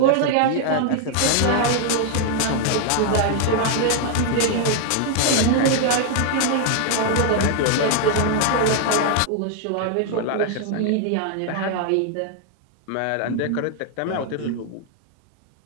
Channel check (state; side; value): different; both; correlation 0.00